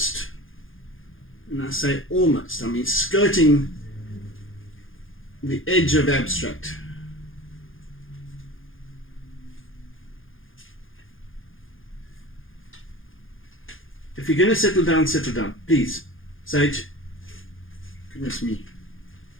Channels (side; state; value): right; late; 0.59 ms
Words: and I say almost, I mean skirting the edge of abstract. If you're going to settle down, please. Sage. Goodness me.